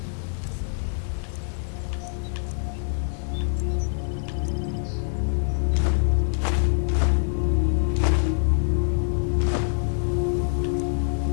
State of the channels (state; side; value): silent; right; digital silence